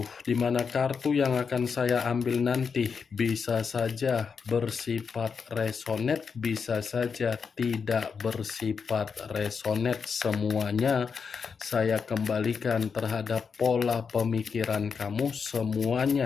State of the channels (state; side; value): quieter; right; 5.8 dB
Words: di mana kartu yang akan saya ambil nanti bisa saja bersifat resonate, bisa saja tidak bersifat resonate. Semuanya saya kembalikan terhadap pola pemikiran kamu,